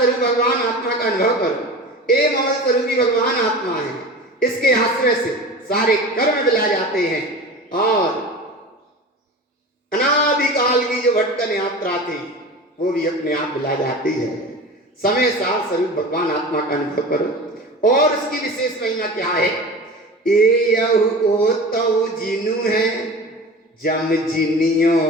भगवान आत्मा का अनुभव करो। ए ममल स्वरूपी भगवान आत्मा है, इसके आश्रय से सारे कर्म विला जाते हैं और अनादिकाल की जो भटकन यात्रा थी वो भी अपने आप विला जाती है। समय साथ स्वरूप भगवान आत्मा का अनुभव करो। और उसकी विशेष महिमा क्या है? एयहु ओतौ जिन जम जिनियो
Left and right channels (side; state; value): both; normal; correlation 0.34